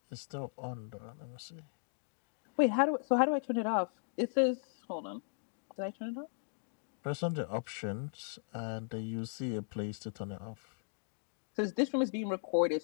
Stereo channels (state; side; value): silent; right; digital silence